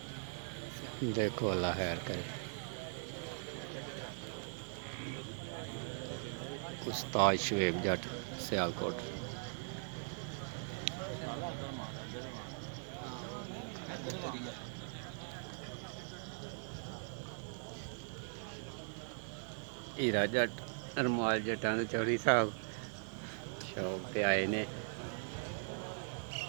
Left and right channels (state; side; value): silent; left; digital silence